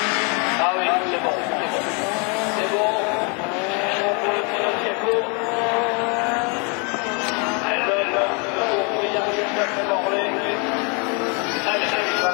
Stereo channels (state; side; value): quieter; right; 34.4 dB